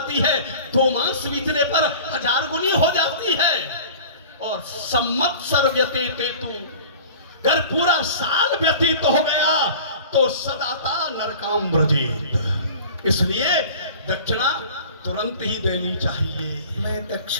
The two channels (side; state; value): both; inverted; correlation -0.41